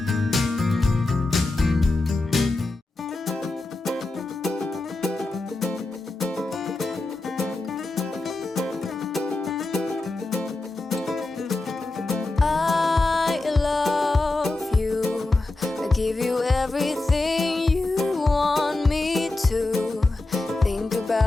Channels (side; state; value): right; quieter; 3.1 dB